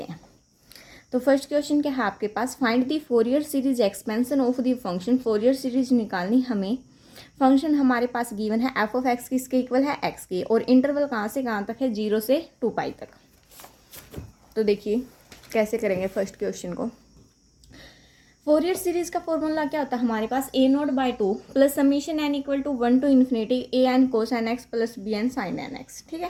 हैं। तो फर्स्ट क्वेश्चन क्या है आपके पास, find the Fourier series expansion of the function. Fourier series निकालनी हमें। फंक्शन हमारे पास गिवन है एफ ऑफ एक्स किसके इक्वल है, एक्स के, और इंटरवल कहाँ से कहाँ तक है, 0 से 2π तक। तो देखिए कैसे करेंगे फर्स्ट क्वेश्चन को। फोरियर सीरीज का फॉर्मूला क्या होता है हमारे पास, a naught by 2 plus summation n equal to 1 to infinity a n cos n x plus b n sine n x. ठीक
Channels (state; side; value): identical; both; correlation 1.00